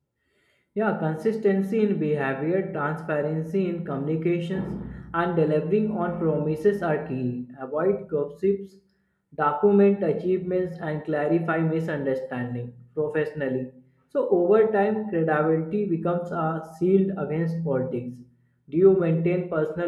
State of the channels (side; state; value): both; identical; correlation 1.00